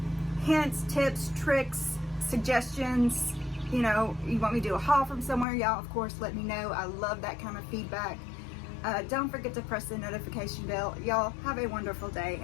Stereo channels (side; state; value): right; drops out; at 5.5 s